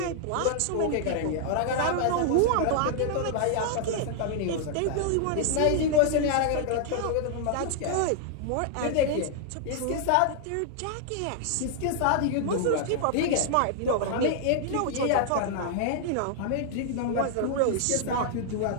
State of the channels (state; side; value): different; both; correlation -0.01